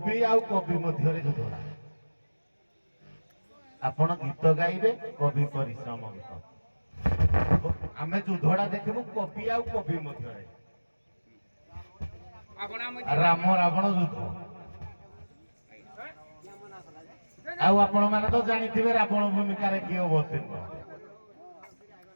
ଆଉ କବି ମଧ୍ୟରେ ଯୁଦ୍ଧ। ଆପଣ ଗୀତ ଗାଇବେ, କବି ପରିଶ୍ରମ ଗୀତ। ଆମେ ଯୁଦ୍ଧଟା ଦେଖିବୁ କବି ଆଉ କବି ମଧ୍ୟରେ। ରାମ ରାବଣ ଯୁଦ୍ଧ। ଆଉ ଆପଣ ମାନେ ତ ଜାଣିଥିବେ ରାବଣ ଭୂମିକାରେ କିଏ ଅବତୀର୍ଣ୍ଣ।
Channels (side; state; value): both; inverted; correlation -1.00